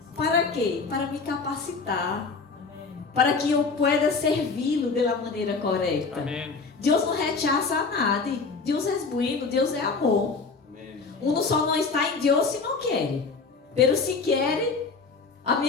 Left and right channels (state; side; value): quieter; right; 4.5 dB